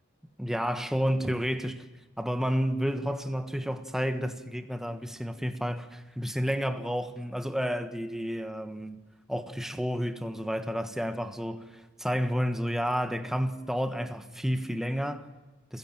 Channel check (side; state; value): both; normal; correlation 0.95